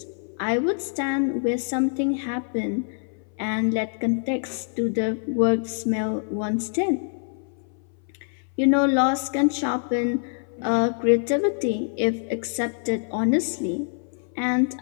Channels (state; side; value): silent; right; 59 dB below the other